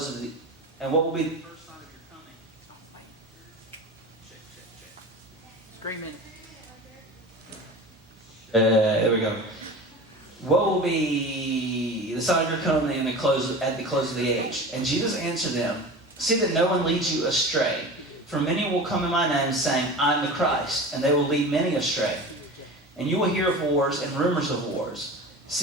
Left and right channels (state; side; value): normal; both; correlation 0.33